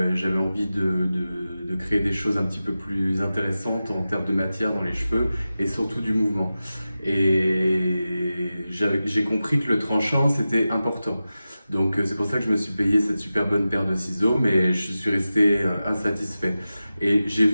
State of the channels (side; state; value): both; inverted; correlation -0.94